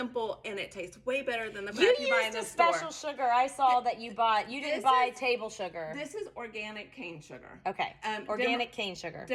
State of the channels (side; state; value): both; identical; correlation 1.00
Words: and it tastes way better than the crap you buy in the store. Special sugar I saw that you bought. You didn't buy table sugar. This is organic cane sugar. Okay. Organic cane sugar.